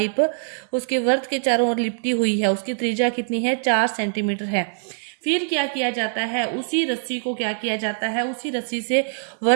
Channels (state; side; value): silent; left; digital silence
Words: उसके वर्त के चारों ओर लिपटी हुई है, उसकी त्रिज्या कितनी है? 4 सेंटीमीटर है। फिर क्या किया जाता है? उसी रस्सी को क्या किया जाता है? उसी रस्सी से